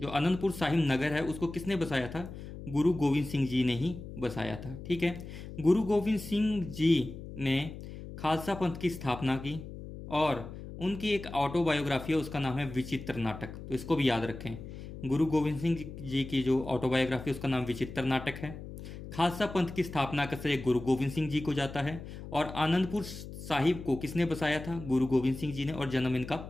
आनंदपुर साहिब नगर है, उसको किसने बसाया था? गुरु गोविंद सिंह जी ने ही बसाया था, ठीक है। गुरु गोविंद सिंह जी ने खालसा पंथ की स्थापना की। और उनकी एक ऑटोबायोग्राफी है, उसका नाम है विचित्र नाटक। तो इसको भी याद रखें, गुरु गोविंद सिंह जी की जो ऑटोबायोग्राफी उसका नाम विचित्र नाटक है। खालसा पंथ की स्थापना का श्रेय गुरु गोविंद सिंह जी को जाता है। और आनंदपुर साहिब को किसने बसाया था? गुरु गोविंद सिंह जी ने। और जन्म इनका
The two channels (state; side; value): noise; left; hum, 11 dB below the sound